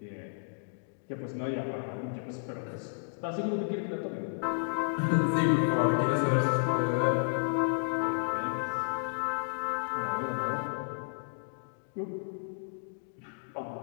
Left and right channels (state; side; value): silent; right; digital silence